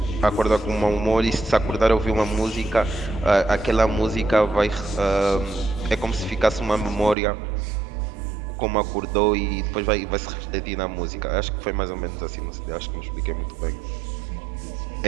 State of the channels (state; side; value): drops out; left; at 7.2 s